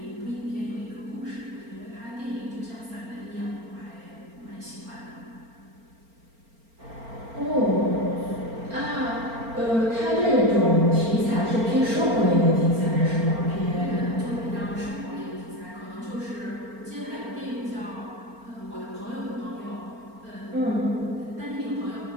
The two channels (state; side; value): late; left; 4.4 ms